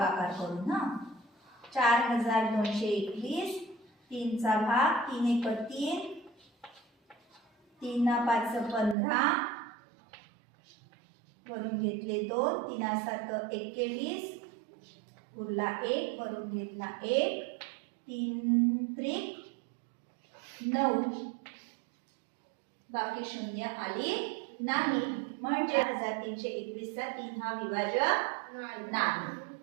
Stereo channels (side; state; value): left; drops out; at 9.0 s